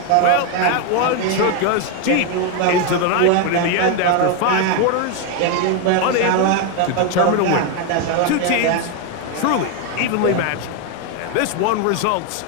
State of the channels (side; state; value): both; different; correlation 0.01